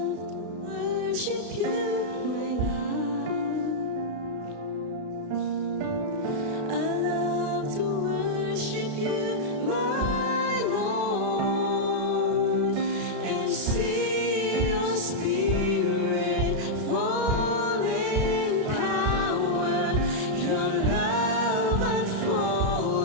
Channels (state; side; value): late; left; 33 ms